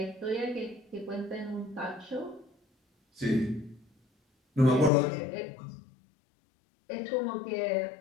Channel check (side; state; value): right; drops out; at 4.9 s